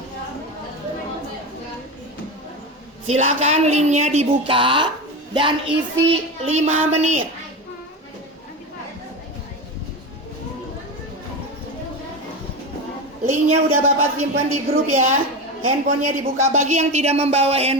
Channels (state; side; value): normal; both; correlation 0.21